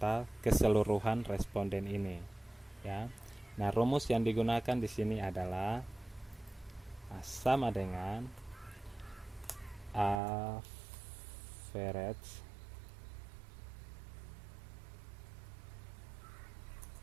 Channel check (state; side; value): drops out; left; at 10.2 s